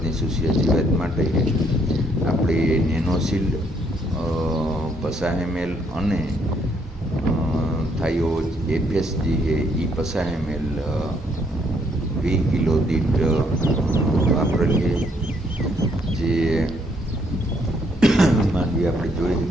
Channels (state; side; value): normal; both; correlation 0.70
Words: સુસિયા જીવાત માટે આપણે નેનોશિલ્ડ 50 ml અને થાયો FS જે છે એ 50 ml 20 કિલો દીઠ વાપરેલ છે. જે માંડવી આપણે જોઈ